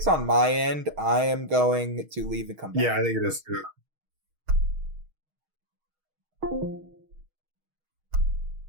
on my end. I am going to leave and come back. Yeah, I think it is too.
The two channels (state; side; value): late; left; 6.4 ms